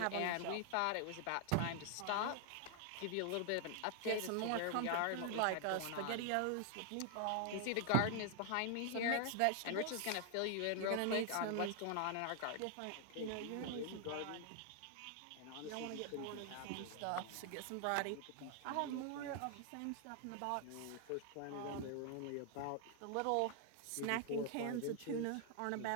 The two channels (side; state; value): both; different; correlation 0.00